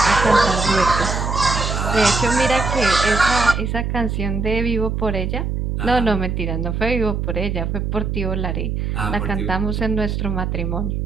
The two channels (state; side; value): noise; right; hum, 1 dB below the sound